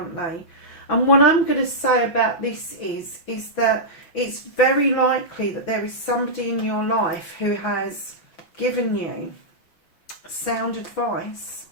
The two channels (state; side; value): late; right; 6.1 ms